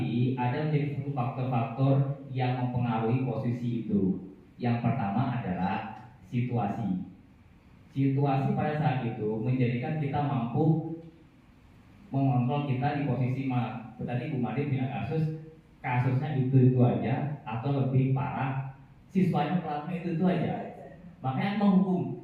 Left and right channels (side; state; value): both; identical; correlation 1.00